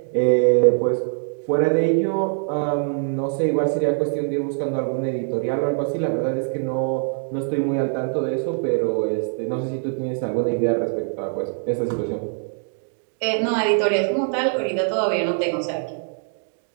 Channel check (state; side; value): silent; left; 61 dB below the other